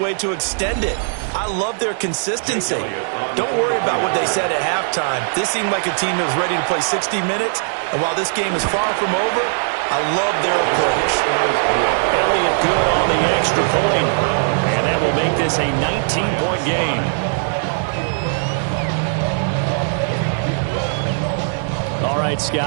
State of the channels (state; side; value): silent; left; digital silence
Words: to extend it. I love their consistency. Don't worry about what they said at halftime. This seemed like a team that was ready to play 60 minutes, and while this game is far from over, I love their approach. Elliott good on the extra point, and that will make this a 19-point game. All right,